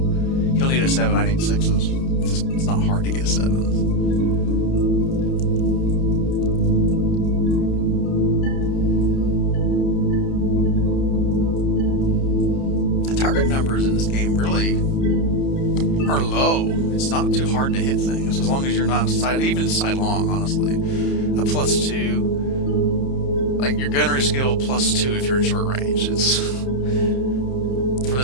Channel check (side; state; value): right; late; 30 ms